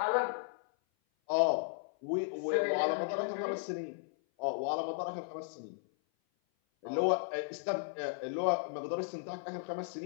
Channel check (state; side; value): silent; right; 54 dB below the other